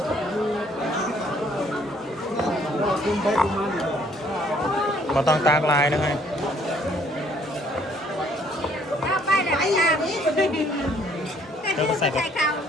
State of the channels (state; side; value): normal; both; correlation 0.63